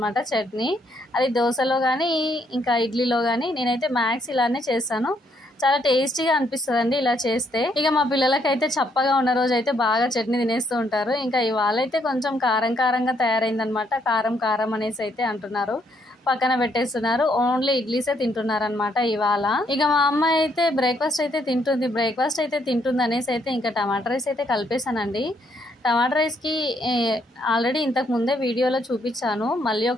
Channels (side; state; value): both; normal; correlation 0.72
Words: చట్నీ. అది దోశలో కానీ ఇంకా ఇడ్లీలో కానీ నేనైతే మ్యాక్స్ ఇలానే చేస్తాను. చాలా టేస్టీగా అనిపిస్తుంది అండి ఇలా చేస్తే. ఇక మా పిల్లలకైతే చప్పగా ఉన్న రోజు అయితే బాగా చట్నీ తినేస్తూ ఉంటారు. ఇంకా ఇవాళ అయితే కొంచెం కారంగా తయారైందనమాట. కారం అనేసి అయితే అంటున్నారు. పక్కన పెట్టేస్తున్నారు. ఓన్లీ ఇడ్లీసే తింటున్నారనమాట ఇవాళ. ఇక మా అమ్మాయి అయితే బ్రేక్ఫాస్ట్ అయితే తింటుంది అనేసి అయితే ఇంకా టమాటా రైస్ అయితే కలిపేశానండి. టమాటా రైస్కి ఆల్రెడీ ఇంతకు ముందే వీడియోలో చూపించాను. మళ్ళీ